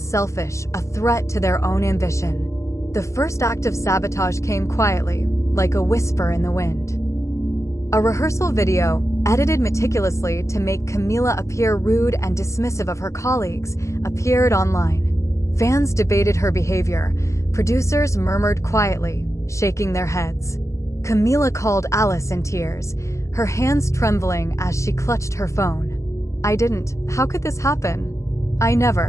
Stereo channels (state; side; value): late; right; 0.14 ms